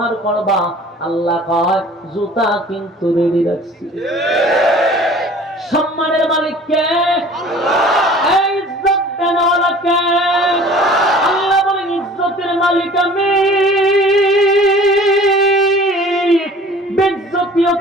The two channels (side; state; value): both; normal; correlation 0.47